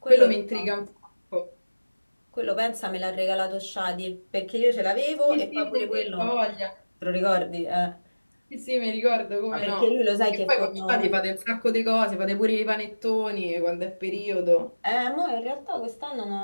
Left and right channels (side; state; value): both; inverted; correlation -1.00